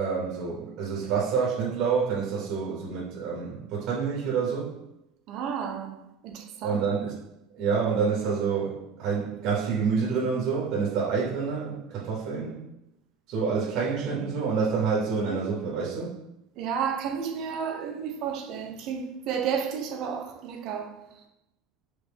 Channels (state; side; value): quieter; left; 5.5 dB